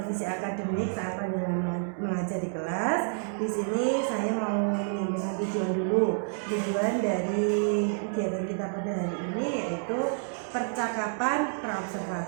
akademik saat panjenengan mengajar di kelas, di sini saya mau menyampaikan tujuan dulu. Tujuan dari kegiatan kita pada hari ini yaitu percakapan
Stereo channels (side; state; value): left; silent; digital silence